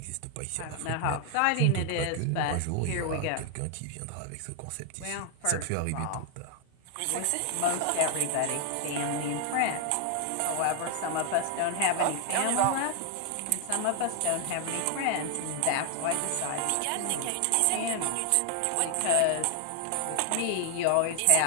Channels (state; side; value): different; both; correlation 0.00